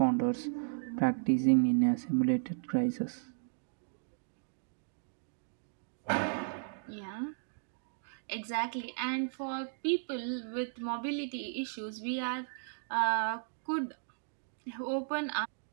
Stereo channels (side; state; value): left; silent; digital silence